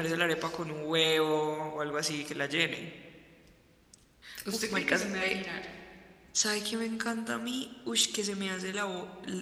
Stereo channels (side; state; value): both; identical; correlation 1.00